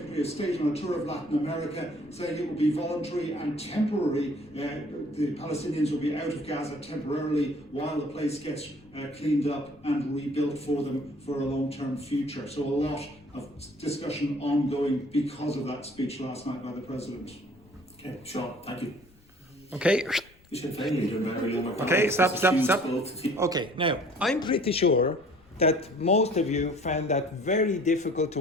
of State, on a tour of Latin America, saying it will be voluntary and temporary. The Palestinians will be out of Gaza temporarily while the place gets cleaned up and rebuilt for them for a long-term future. So a lot of discussion ongoing because of that speech last night by the President. Okay, Sean, thank you. Okay. Okay, stop. Okay, now, I'm pretty sure that most of you found that very difficult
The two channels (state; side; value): noise; left; rumble, 28 dB below the sound